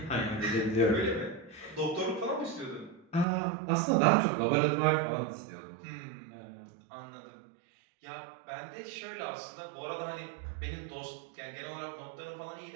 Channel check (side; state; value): left; drops out; at 3.2 s